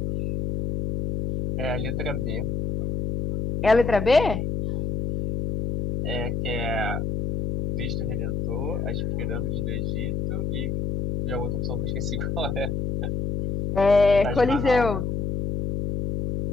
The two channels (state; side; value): noise; left; hum, 2 dB below the sound